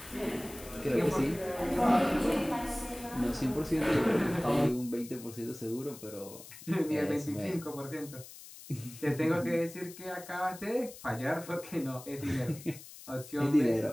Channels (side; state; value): left; noise; hiss, 16 dB below the sound